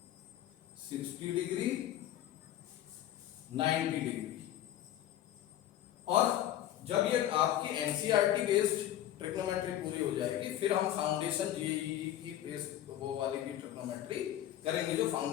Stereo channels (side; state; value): right; quieter; 12.4 dB